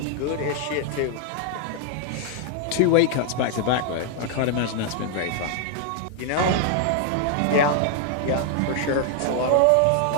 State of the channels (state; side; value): different; both; correlation 0.00